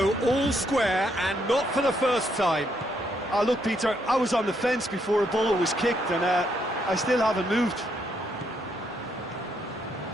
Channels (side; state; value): both; normal; correlation 0.75